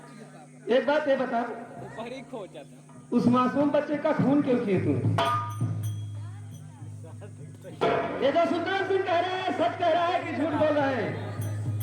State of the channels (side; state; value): both; identical; correlation 1.00